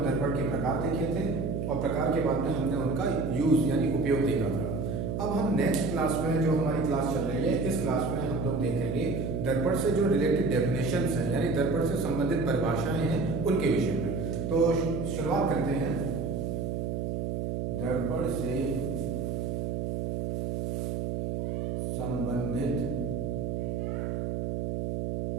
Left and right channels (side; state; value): right; noise; hum, 1 dB below the sound